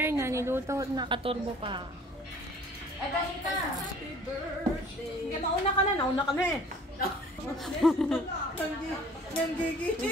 na niluto, nakaturbo pa. Ay, dahil ka. Happy birthday. Mauna ka na, nauna ka na eh.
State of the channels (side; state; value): both; normal; correlation 0.50